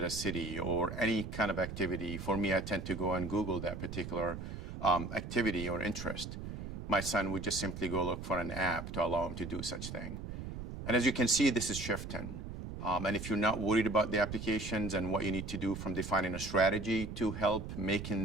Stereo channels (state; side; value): noise; right; rumble, 8 dB below the sound